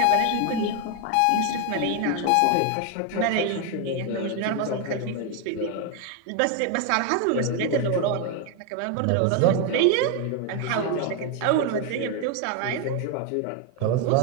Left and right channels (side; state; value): both; different; correlation 0.01